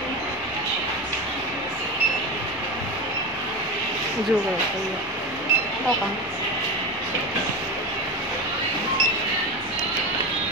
dù rồi, tao còn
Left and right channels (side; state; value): both; normal; correlation 0.22